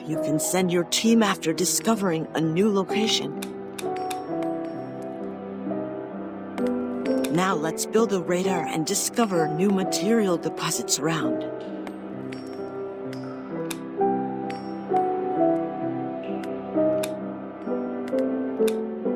You can send your team after discovering a new location. Now let's build a radar and discover new material deposits around.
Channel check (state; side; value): identical; both; correlation 1.00